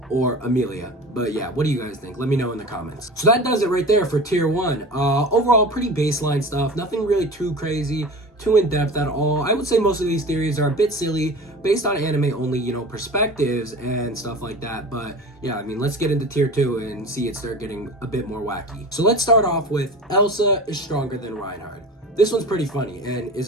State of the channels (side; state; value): both; normal; correlation 0.35